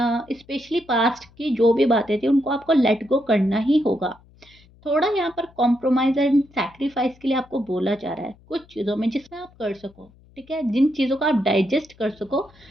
स्पेशली पास्ट की जो भी बातें थी उनको आपको लेट गो करना ही होगा। थोड़ा यहाँ पर कॉम्प्रोमाइज़ एंड सैक्रिफाइस के लिए आपको बोला जा रहा है, कुछ चीज़ों में जिसमें आप कर सको, ठीक है? जिन चीज़ों को आप डाइजेस्ट कर सको,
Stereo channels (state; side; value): noise; left; hum, 28 dB below the sound